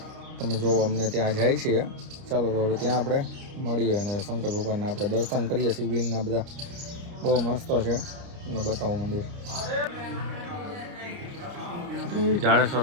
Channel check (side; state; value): left; late; 29 ms